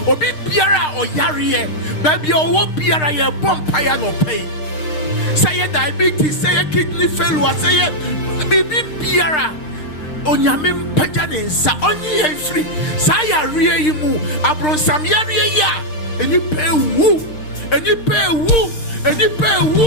obi biara oyare ba bia owo biara ye bompaye no pay say diabetes say kidney failure say bibi biara onyame mpaja ne nsa onye ye free say yare yi mu abronsam yare yi a eni pe wu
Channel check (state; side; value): late; right; 6.5 ms